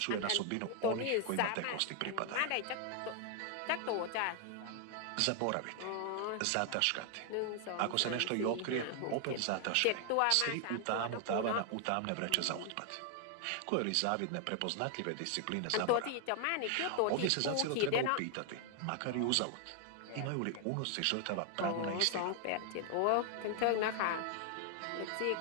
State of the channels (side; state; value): both; different; correlation 0.00